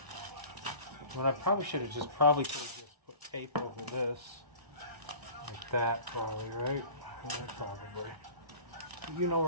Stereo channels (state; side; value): late; left; 1.0 ms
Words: Well, I probably should have just put tape over this like that, probably, right? Yeah, probably. You know